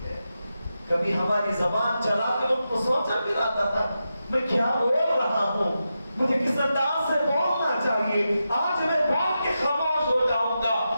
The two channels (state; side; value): inverted; both; correlation -0.89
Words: ہے، کبھی ہماری زبان چلاتے وقت تو سوچا بھی رہتا تھا میں کیا بول رہا ہوں، مجھے کس انداز سے بولنا چاہیے، آج میں بول کے خاموش ہو جاؤں گا،